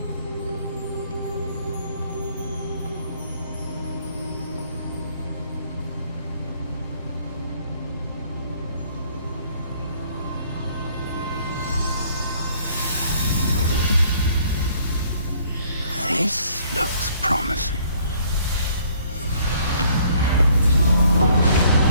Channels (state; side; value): inverted; both; correlation -0.61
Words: This looks promising.